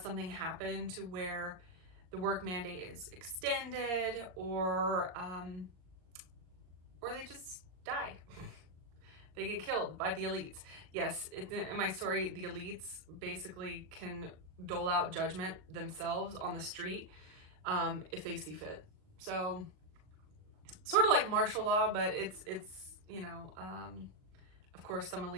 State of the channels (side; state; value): left; late; 38 ms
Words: happen to where the work mandate is extended, or they just die. They get killed by the elites. Yes, in my story, the elites basically can dole out judgment themselves on the street if they see fit. So, sort of like martial law, but it's you know, of course, some